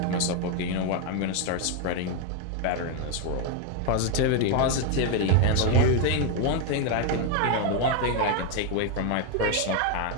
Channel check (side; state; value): both; different; correlation 0.01